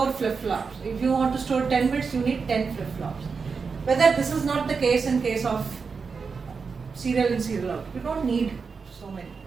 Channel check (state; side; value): quieter; left; 5.2 dB